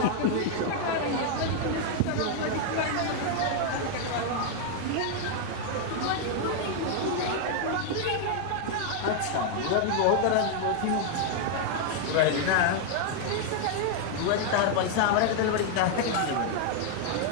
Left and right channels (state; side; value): different; both; correlation 0.00